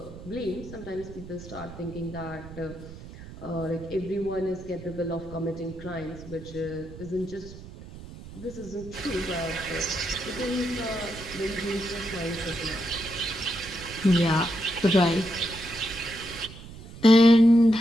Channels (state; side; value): noise; right; rumble, 15 dB below the sound